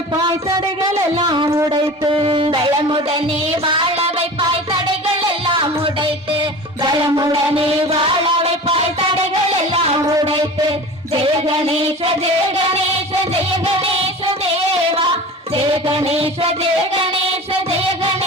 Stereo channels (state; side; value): normal; both; correlation 0.36